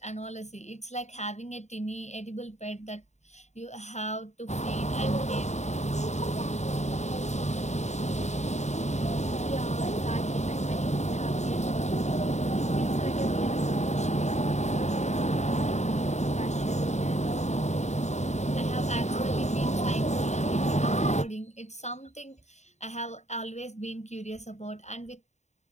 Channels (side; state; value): right; late; 0.33 ms